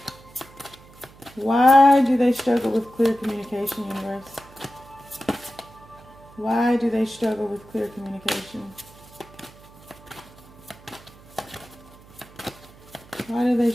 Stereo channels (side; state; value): right; noise; hum, 23 dB below the sound